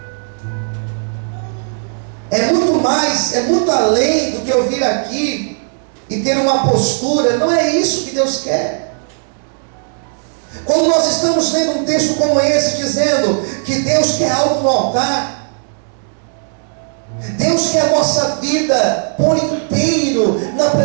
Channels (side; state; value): left; silent; digital silence